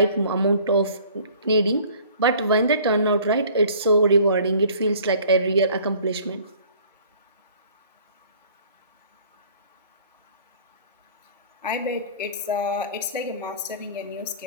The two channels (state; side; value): inverted; both; correlation -0.52